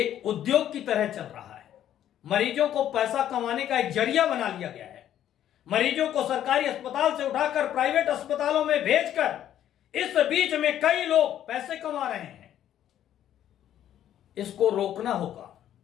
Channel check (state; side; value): quieter; right; 11.1 dB